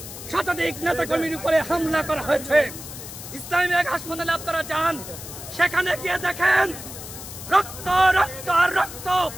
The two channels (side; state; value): left; noise; hiss, 12 dB below the sound